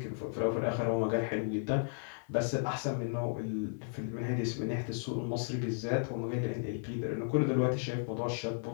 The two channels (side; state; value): right; silent; 55 dB below the other